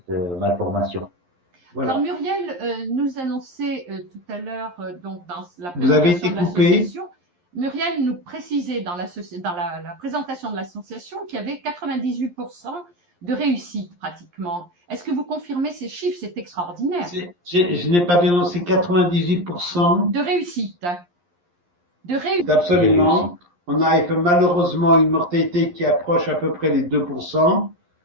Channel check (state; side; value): late; left; 11 ms